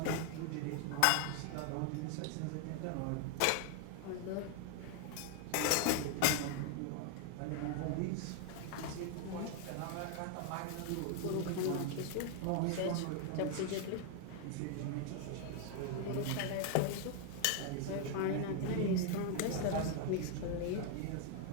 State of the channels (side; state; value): both; different; correlation 0.00